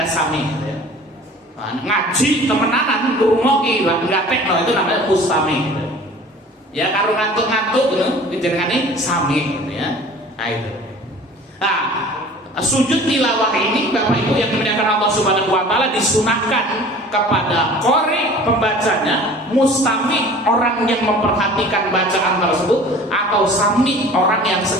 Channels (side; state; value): both; normal; correlation 0.45